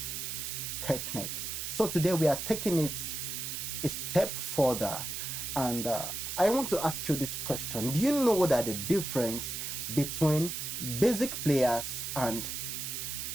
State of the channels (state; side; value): noise; right; hiss, 4 dB below the sound